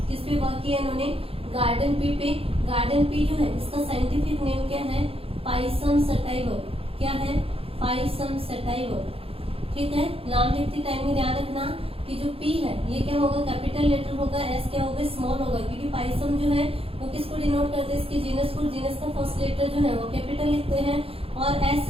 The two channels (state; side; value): late; left; 0.27 ms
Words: किस पे वर्क किया इन्होंने? गार्डन पी पे। गार्डन पी जो है इसका साइंटिफिक नेम क्या है? पाइसम सटाइवर। क्या है? पाइसम सटाइवर, ठीक है। नाम लिखते टाइम में ध्यान रखना कि जो पी है ये क्या होगा? कैपिटल लेटर होगा, एस क्या होगा? स्मॉल होगा, क्योंकि पाइसम जो है वो किसको डिनोट करते हैं? इसके जीनस को। जीनस का फर्स्ट लेटर जो है वो कैपिटल लिखते हैं, और एस